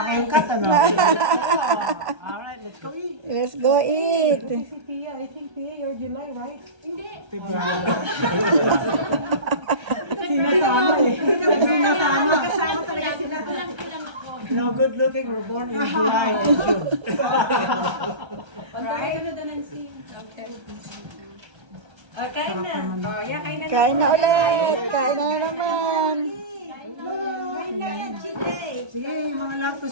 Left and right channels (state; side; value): late; left; 1.3 ms